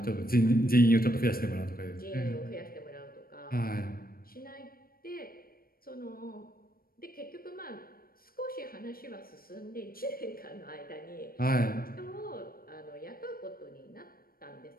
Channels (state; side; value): late; right; 0.43 ms